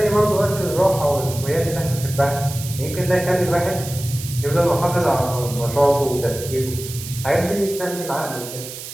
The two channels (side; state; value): right; noise; hiss, 11 dB below the sound